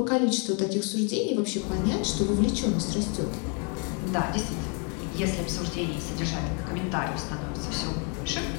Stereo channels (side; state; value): right; quieter; 36.9 dB